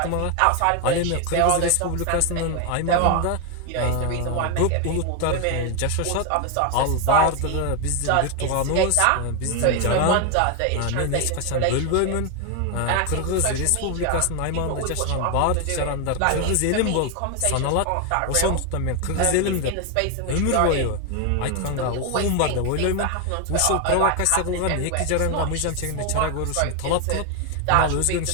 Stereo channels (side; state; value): both; different; correlation 0.01